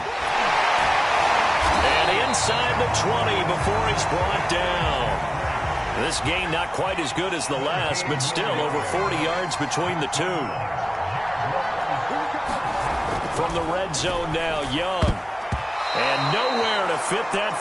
And inside the 20 before he's brought down. This game not quite as good as the last, but still over 40 yards between the two. From the red zone now, Young. And nowhere to fit that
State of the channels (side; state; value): both; identical; correlation 1.00